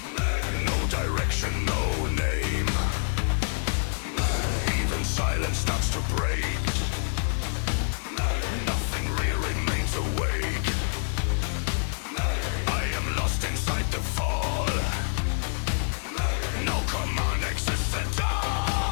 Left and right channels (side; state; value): right; silent; 60 dB below the other